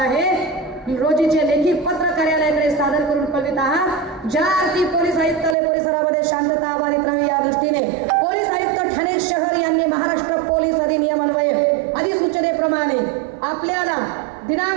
रोजीचे लेखी पत्र कार्यालयाकडे सादर करून कळवित आहात। ज्या अर्थी पोलीस आयुक्तालय परिसरामध्ये शांतता अबाधित राहावी या दृष्टीने पोलीस आयुक्त ठाणे शहर यांनी महाराष्ट्र पोलीस अधिनियम अन्वये अधिसूचनेप्रमाणे आपल्याला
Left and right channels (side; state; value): left; drops out; at 5.6 s